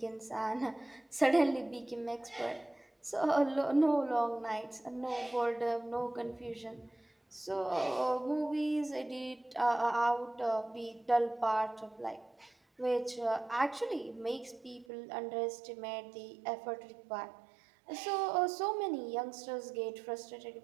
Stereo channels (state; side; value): drops out; left; at 14.9 s